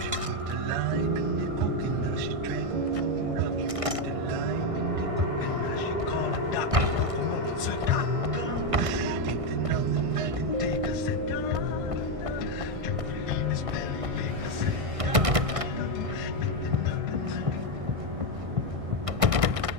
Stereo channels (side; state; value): left; late; 1.6 ms